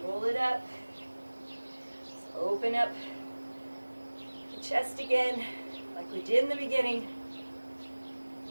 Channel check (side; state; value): both; inverted; correlation -1.00